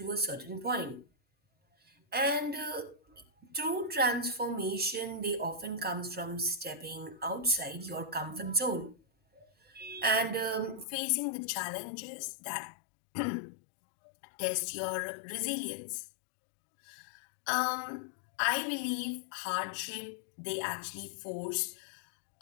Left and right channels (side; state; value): right; drops out; at 10.9 s